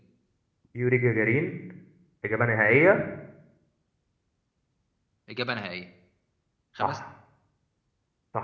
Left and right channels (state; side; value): identical; both; correlation 1.00